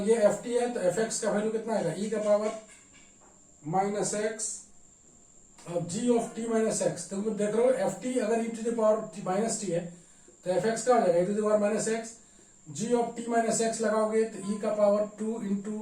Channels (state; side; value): identical; both; correlation 1.00